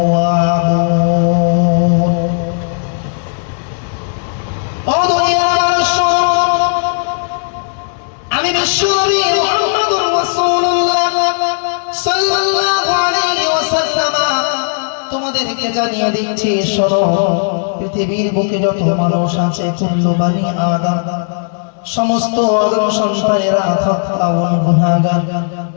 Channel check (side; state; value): right; silent; digital silence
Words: ও দুনিয়ার মানুষ, আমি বিশ্বনবী মুহাম্মদুর রাসূলুল্লাহ সাল্লাল্লাহু আলাইহি ওয়াসাল্লাম তোমাদেরকে জানিয়ে দিচ্ছি, শোনো, পৃথিবীর বুকে যত মানুষ আছে, কুল্লু বানি আদম, সমস্ত আদম সন্তানেরা খাতাউন, গুনাহগার।